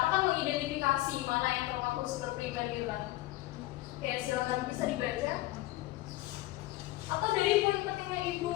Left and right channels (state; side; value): quieter; right; 17.8 dB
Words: kan mengidentifikasi mana yang termasuk sumber primer gitu kan. Oke, silakan bisa dibaca. Atau dari poin pentingnya